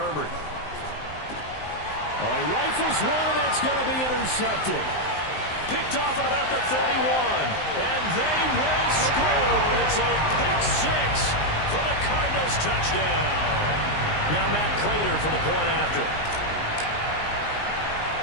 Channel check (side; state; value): right; late; 19 ms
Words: He rifles one, and that's going to be intercepted. Picked off at about the 31, and they will score. It's a pick 6 for the Cardinals touchdown. Now Matt Prater for the point after.